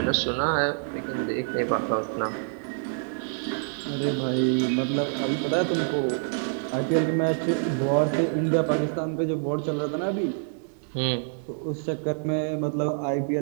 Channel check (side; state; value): left; silent; digital silence